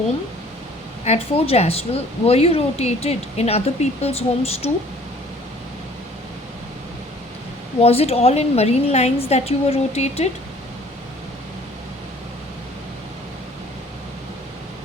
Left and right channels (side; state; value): both; normal; correlation 0.54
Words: at Fort Jaswal, were you rotated in other people's homes too? Was it all in Marine Lines that you were rotated?